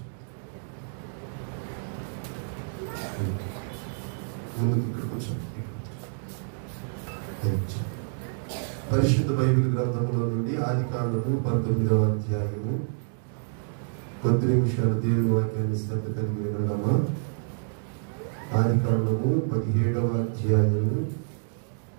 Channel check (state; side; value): silent; left; digital silence